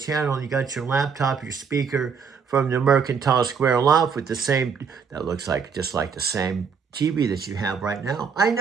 You got your laptop, your speaker from the Mercantile Square loft with the same, that looks like just like the same TV that you have right now. I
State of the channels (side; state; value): left; quieter; 6.2 dB